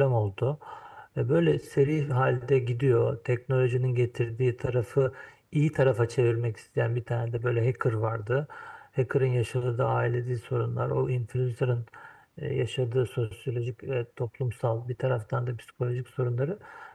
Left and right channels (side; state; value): both; identical; correlation 1.00